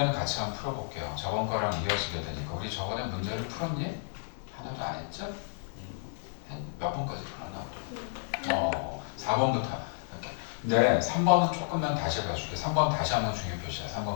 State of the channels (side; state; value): right; silent; digital silence